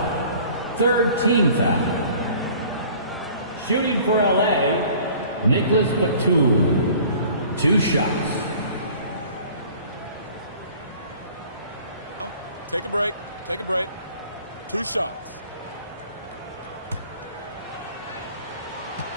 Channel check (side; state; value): both; inverted; correlation -0.50